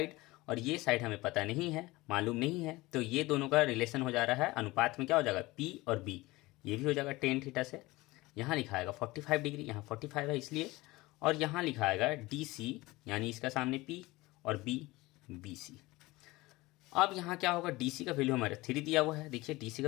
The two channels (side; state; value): right; quieter; 20.6 dB